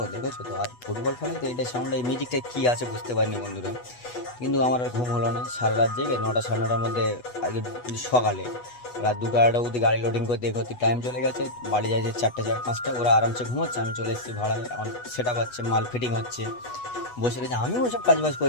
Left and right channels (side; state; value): right; late; 8.2 ms